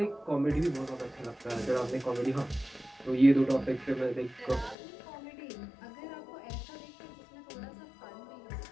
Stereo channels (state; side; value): drops out; right; at 4.8 s